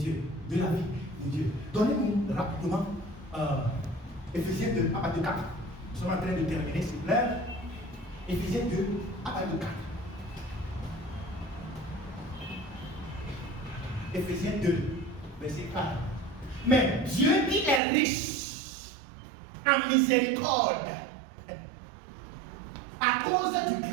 de la vie de Dieu. Donnez-nous rapidement Éphésiens 2, à partir de 4. Nous sommes en train de terminer, s'il vous plaît. Éphésiens 2, à partir de 4. Éphésiens 2, verset 4. Mais Dieu qui est riche en miséricorde, à cause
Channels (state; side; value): drops out; left; at 17.8 s